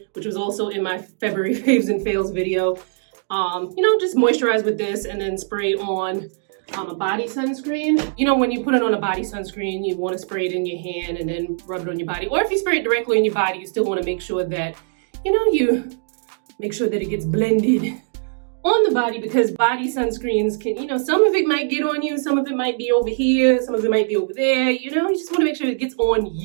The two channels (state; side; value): silent; left; digital silence